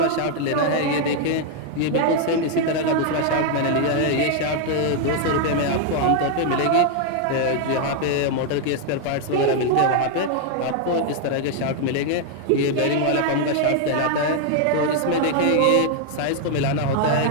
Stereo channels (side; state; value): both; different; correlation 0.00